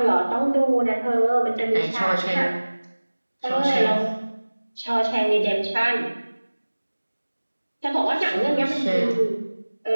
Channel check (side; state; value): both; inverted; correlation -1.00